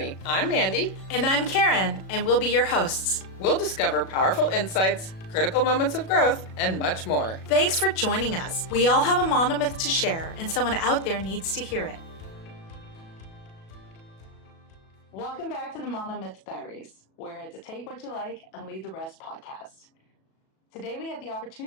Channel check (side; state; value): right; late; 37 ms